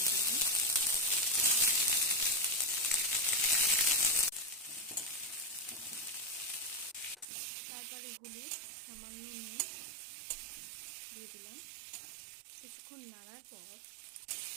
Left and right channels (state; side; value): drops out; left; at 7.2 s